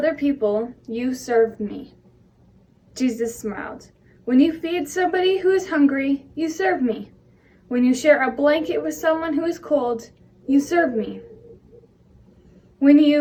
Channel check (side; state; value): both; identical; correlation 1.00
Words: people, you serve me. Jesus smiled. When you feed somebody who is hungry, you serve me. When you share a blanket with someone who is cold, you serve me. When